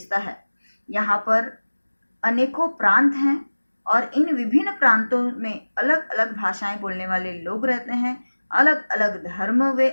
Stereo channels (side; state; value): both; inverted; correlation -1.00